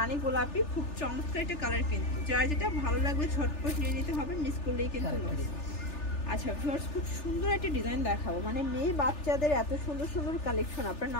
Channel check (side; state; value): right; late; 3.4 ms